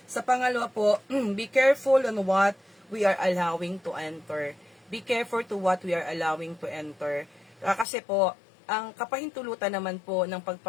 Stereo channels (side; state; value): right; drops out; at 7.9 s